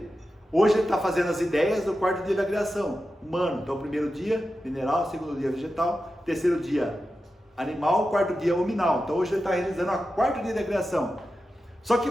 Hoje ele está fazendo as ideias do quarto dia da criação, humano. Então, o primeiro dia, mineral, segundo dia, vegetal, terceiro dia, animal, quarto dia, hominal. Então, hoje ele está realizando o quarto dia da criação. Só que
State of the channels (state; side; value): normal; both; correlation 0.91